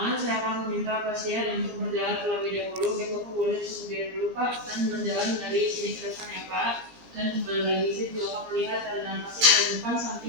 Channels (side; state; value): left; late; 17 ms